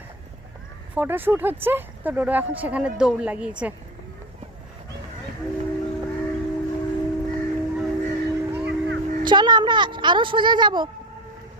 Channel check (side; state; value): both; normal; correlation 0.24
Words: ফটোশ্যুট হচ্ছে, তো ডোডো এখন সেখানে দৌড় লাগিয়েছে। চলো আমরা আরো সোজা যাব,